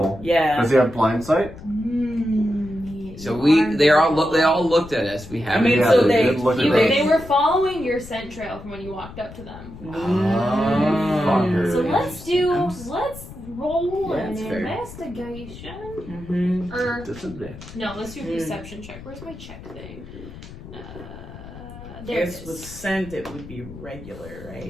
Yeah. Does he have blind sight? So they all looked at us. We I haven't. mean, Yeah, so they they, did look at You, us. they were following your scent trail from when you walked up to them. Fuckers. So let's roll Yeah, an that's fair. investigation. Mm-hmm. Or Disadvantage. no, let's do a perception check. Where's my check thing? There it Guess with is. scent it would be regular, right?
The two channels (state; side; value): noise; left; rumble, 15 dB below the sound